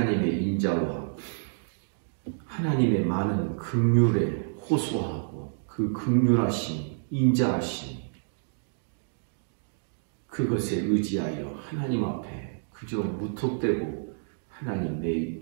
인자와 하나님의 많은 긍휼에 호소하고 그 긍휼하심, 인자하심 그것에 의지하여 하나님 앞에 그저 무턱대고 하나님 내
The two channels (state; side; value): silent; left; digital silence